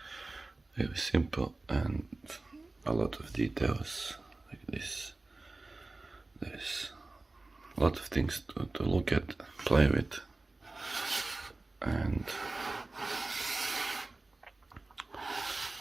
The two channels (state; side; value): quieter; left; 3.2 dB